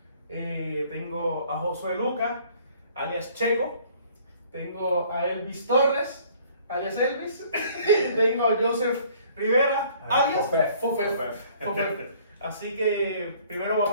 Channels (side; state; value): both; inverted; correlation -0.57